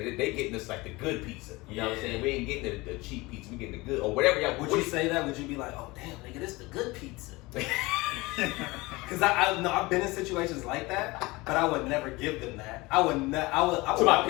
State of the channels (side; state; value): right; quieter; 22.4 dB